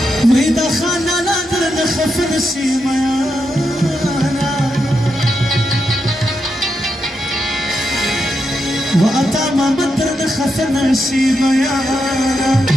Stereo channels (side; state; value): both; normal; correlation 0.84